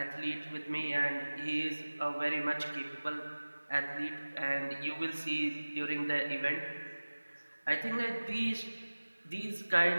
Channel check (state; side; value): inverted; both; correlation -1.00